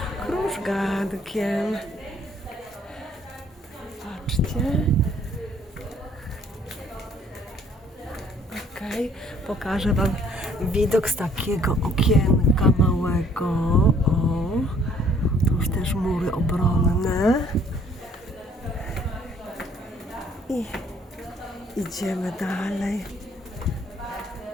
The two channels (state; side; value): normal; both; correlation 0.60